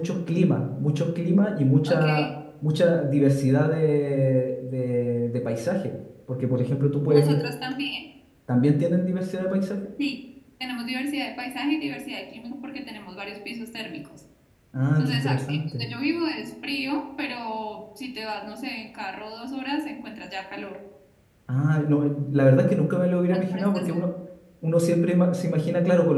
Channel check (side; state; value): both; identical; correlation 1.00